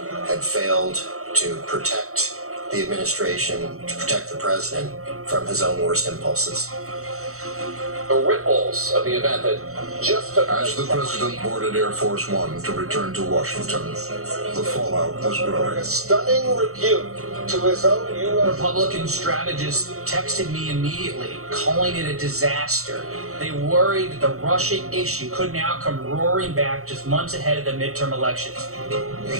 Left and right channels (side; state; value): left; late; 0.64 ms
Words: had failed to protect the administration, to protect the president from his own worst impulses. The ripples of the event that just took As the president boarded Air Force One to return to Washington, the fallout was growing. A stunning rebuke to his own U.S. Republican strategists texted me immediately, calling it a disaster. They worried that the Russia issue could now come roaring back just months ahead of the midterm elections.